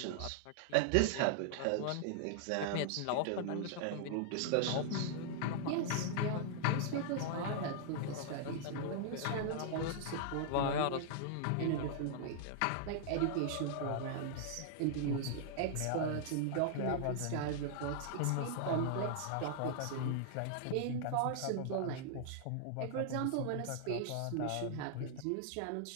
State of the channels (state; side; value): different; both; correlation -0.01